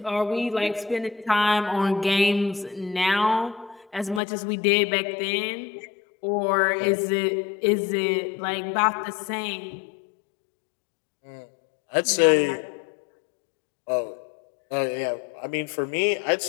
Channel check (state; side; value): drops out; right; at 4.2 s